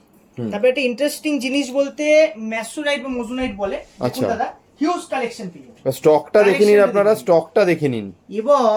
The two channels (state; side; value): identical; both; correlation 1.00